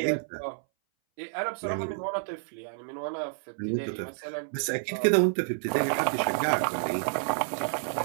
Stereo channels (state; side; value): silent; left; 58 dB below the other